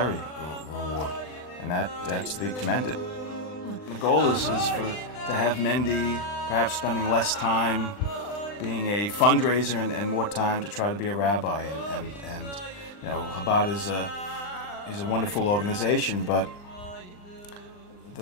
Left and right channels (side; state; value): right; late; 39 ms